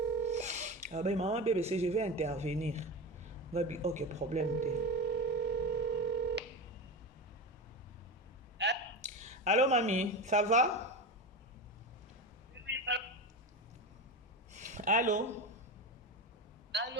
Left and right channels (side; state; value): both; normal; correlation 0.22